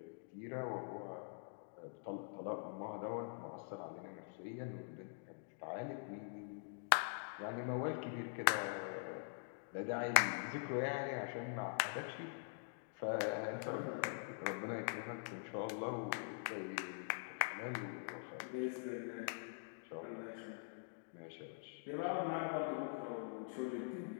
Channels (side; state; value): right; silent; digital silence